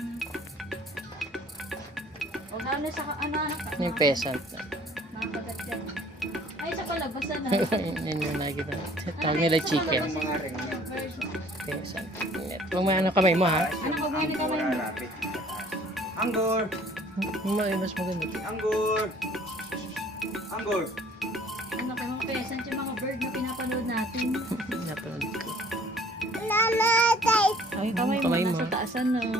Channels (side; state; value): both; normal; correlation 0.55